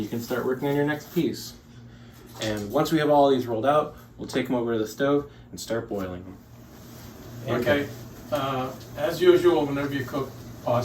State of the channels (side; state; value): both; identical; correlation 1.00